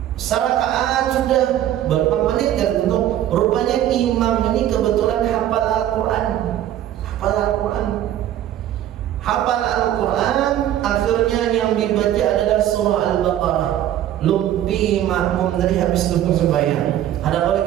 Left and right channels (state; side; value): quieter; left; 12.0 dB